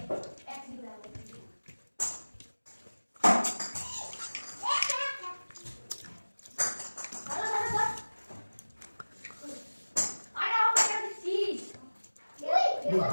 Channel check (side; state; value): both; inverted; correlation -1.00